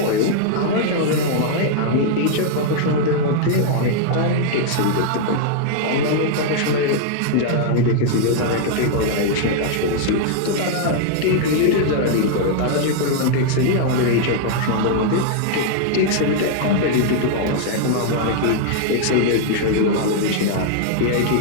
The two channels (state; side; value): different; both; correlation -0.01